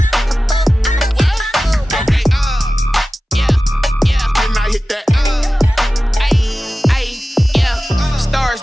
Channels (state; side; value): normal; both; correlation 0.95